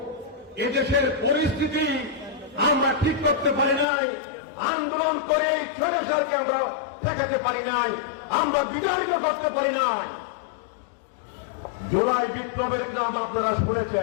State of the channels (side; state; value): right; drops out; at 3.9 s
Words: এদেশের পরিস্থিতি আমরা ঠিক করতে পারি নাই। আন্দোলন করে স্বৈরাচারকে আমরা ঠেকাতে পারি নাই, আমরা বিতাড়িত করতে পারি নাই। জুলাই বিপ্লবের নাম আপনারা